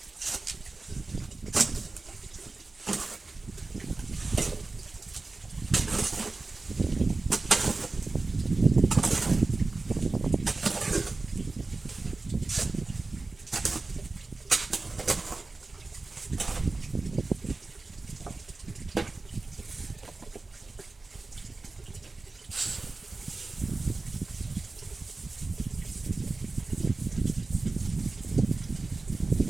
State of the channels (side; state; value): left; quieter; 3.5 dB